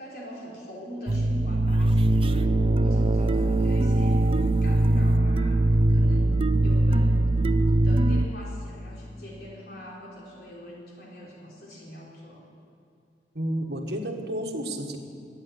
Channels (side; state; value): both; normal; correlation 0.90